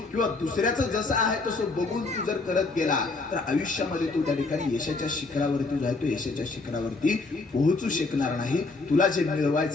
किंवा दुसऱ्याचं जसं आहे तसं बघून तू जर करत गेला तर आयुष्यामध्ये तू त्या ठिकाणी यशाच्या शिखरावरती जातो, यशाच्या शिखरावरती पोहोचू शकणार नाही. तुला जे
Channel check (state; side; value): quieter; right; 3.7 dB